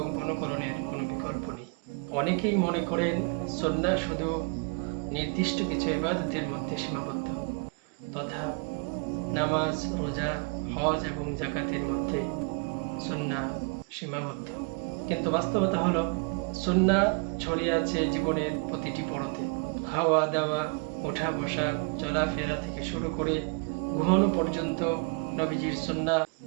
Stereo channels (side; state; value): left; quieter; 36.0 dB